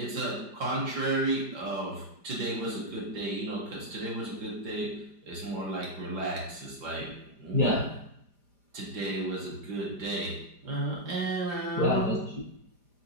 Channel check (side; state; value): left; late; 5.0 ms